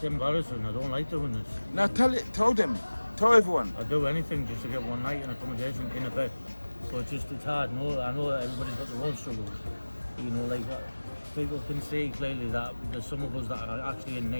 embarrassing. I don't like doing this. Now tell them. Tell everyone. I'd do anything just to get one night in accommodation in a bed. So it's hard. No, I know that everybody's got their own struggles. You know, like people can see clearly that there's some of us that are actually in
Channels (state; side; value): inverted; both; correlation -1.00